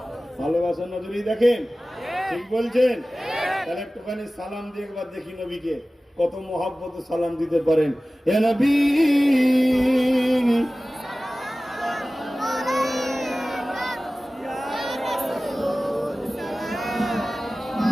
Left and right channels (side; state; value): both; normal; correlation 0.97